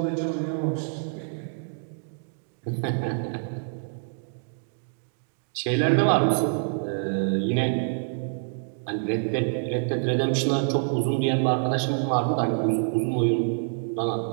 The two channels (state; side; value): silent; left; digital silence